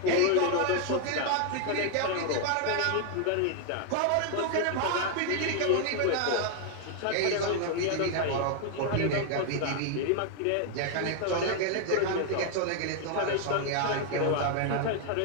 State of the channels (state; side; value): different; both; correlation 0.00